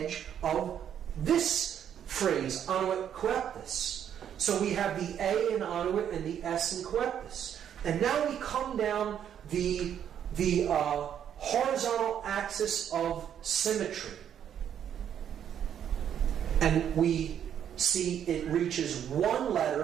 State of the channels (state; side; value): quieter; left; 9.3 dB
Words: of this phrase, annuit coeptus. So we have the A in annuit and the S in coeptus. And now we come down the horizontal axis of symmetry. And we see it reaches one